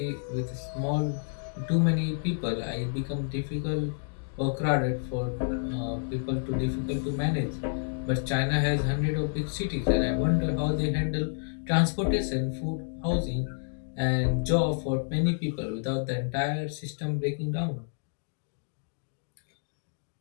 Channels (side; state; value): right; silent; digital silence